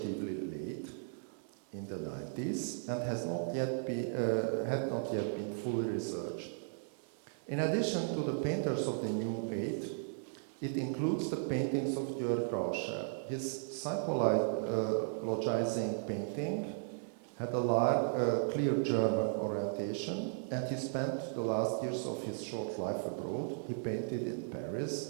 late, in the 90s, and had not yet been fully researched. In addition to the painters of the New Eight, it includes the paintings of György Rauscher. His psychologizing painting had a clear German orientation, and he spent the last years of his short life abroad. He painted in Paris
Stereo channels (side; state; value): left; silent; 54 dB below the other